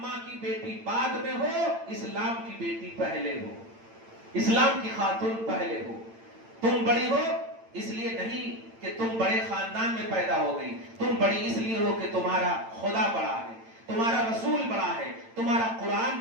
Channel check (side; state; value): left; late; 8.9 ms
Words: کی بیٹی بعد میں ہو، اسلام کی بیٹی پہلے ہو، اسلام کی خاتون پہلے ہو. تم بڑی ہو اس لیے نہیں کہ تم بڑے خاندان میں پیدا ہو گئی. تم بڑی اس لیے ہو کہ تمہارا خدا بڑا ہے، تمہارا رسول بڑا ہے، تمہارا قرآن